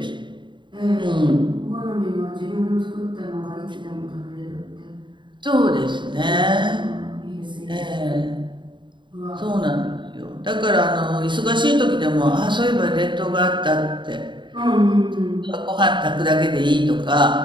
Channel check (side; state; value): left; late; 0.23 ms